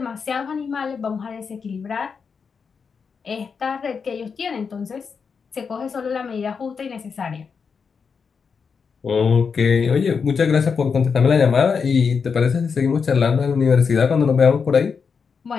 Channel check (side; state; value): right; quieter; 5.8 dB